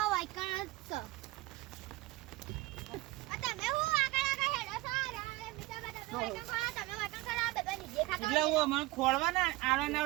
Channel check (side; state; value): left; quieter; 19.4 dB